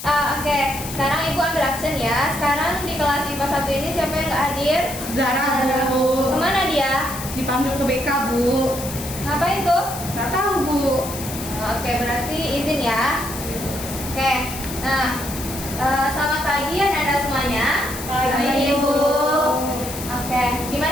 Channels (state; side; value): noise; left; hiss, 10 dB below the sound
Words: Oke, sekarang Ibu ambil action ya. Sekarang di kelas IPA 1 ini siapa yang nggak hadir? Zara, Bu. Kemana dia? Dipanggil ke BK, Bu. Ngapain tuh? Nggak tahu, Bu. Oke, berarti izin ya. Oke, nah selamat pagi Anda semuanya. Pagi, Bu. Oke,